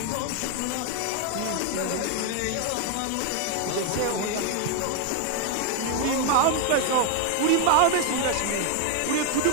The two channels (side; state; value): both; different; correlation 0.01